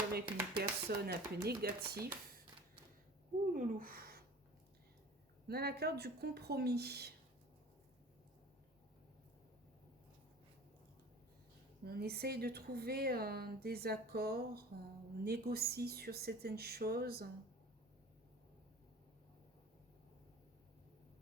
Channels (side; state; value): both; normal; correlation 0.42